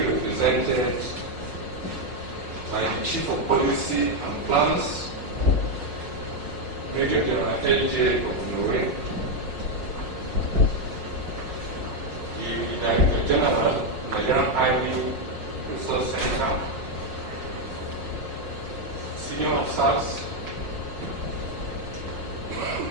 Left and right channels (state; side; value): late; left; 5.5 ms